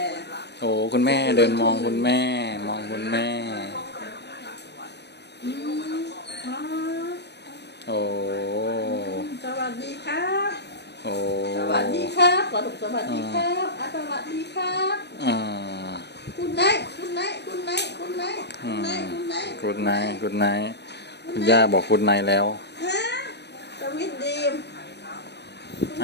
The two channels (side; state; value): right; late; 0.50 ms